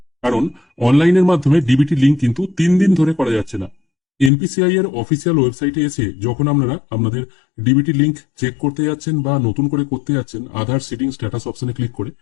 কারণ অনলাইনের মাধ্যমে ডিবিটি লিঙ্ক কিন্তু 3 দিন ধরে করা যাচ্ছে না। এনপিসিআই এর অফিসিয়াল ওয়েবসাইটে এসে যখন আপনারা আপনাদের ডিবিটি লিঙ্ক চেক করতে যাচ্ছেন বা নতুন করে করতে যাচ্ছেন আধার সিটিং স্ট্যাটাস অপশনে ক্লিক করে,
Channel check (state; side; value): drops out; right; at 4.3 s